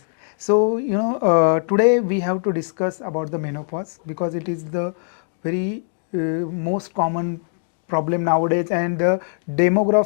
So, you know, today we have to discuss about the menopause because it is the very most common problem nowadays, and the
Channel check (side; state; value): right; silent; digital silence